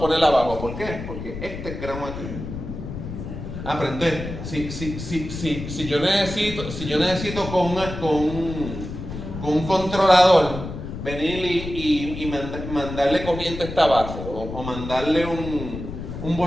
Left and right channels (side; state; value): left; noise; rumble, 8 dB below the sound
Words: poner abajo. ¿Por qué? Porque este es gramo aquí. Pero entonces, si yo necesito con un controlador venir y mandarle corriente a esta base, o mandarle un